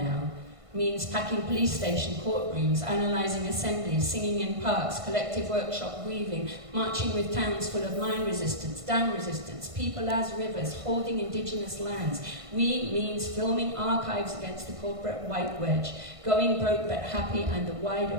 means packing police station courtrooms, analysing assemblies, singing in parks, collective workshop weaving, marching with towns full of mine resistance, dam resistance, people as rivers, holding indigenous lands. We means filming archives against the corporate white wedge, going broke but happy, and the wider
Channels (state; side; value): late; left; 1.5 ms